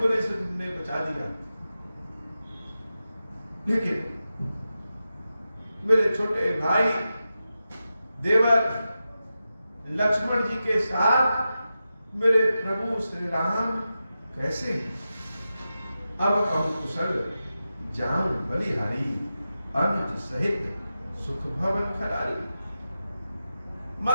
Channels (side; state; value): both; inverted; correlation -0.92